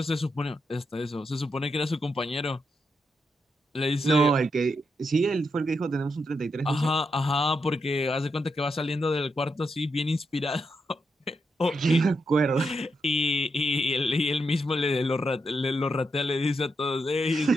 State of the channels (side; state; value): both; normal; correlation 0.83